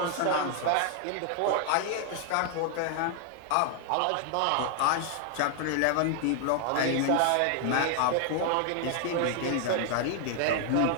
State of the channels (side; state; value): both; different; correlation 0.00